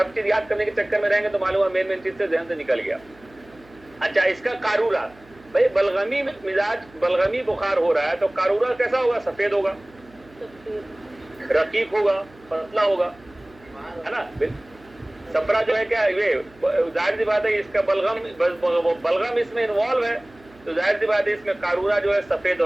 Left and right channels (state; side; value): noise; right; hum, 26 dB below the sound